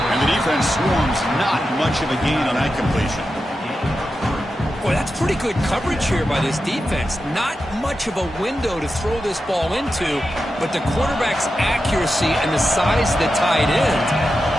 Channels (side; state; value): both; normal; correlation 0.90